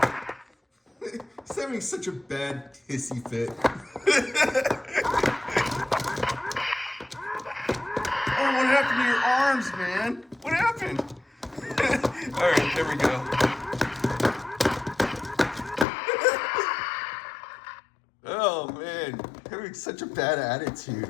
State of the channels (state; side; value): drops out; right; at 15.9 s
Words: He's having such a bad hissy fit. Oh, what happened to your arms, man? What happened? All right, there we go. Oh man, having such a bad attitude,